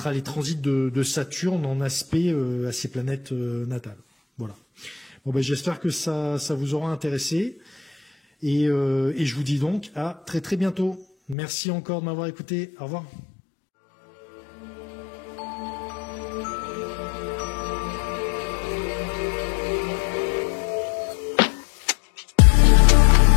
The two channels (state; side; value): drops out; right; at 11.4 s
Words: les transits de Saturne en aspect à ses planètes natales. Voilà. Bon, j'espère que ça vous aura intéressé. Et je vous dis donc à très très bientôt. Merci encore de m'avoir écouté. Au revoir.